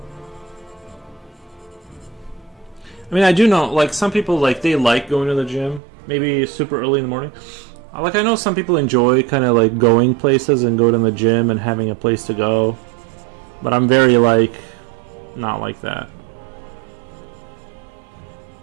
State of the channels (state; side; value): drops out; left; at 5.8 s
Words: I mean, I do know, like, some people, like, they like going to the gym, maybe super early in the morning. Like, I know some people enjoy kind of, like, going places and going to the gym and having a place to go. But I'm very, like, not like that.